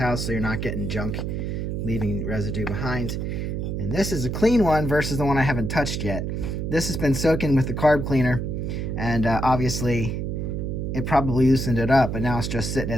so you're not getting junk, leaving residue behind. And this is a clean one versus the one I haven't touched yet. This has been soaking with the carb cleaner, and obviously it probably loosened it up, but now it's just sitting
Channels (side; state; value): right; noise; hum, 2 dB below the sound